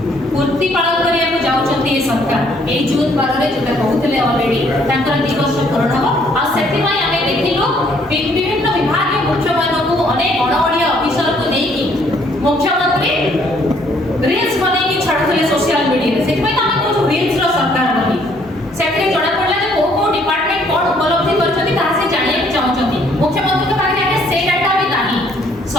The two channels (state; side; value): normal; both; correlation 0.65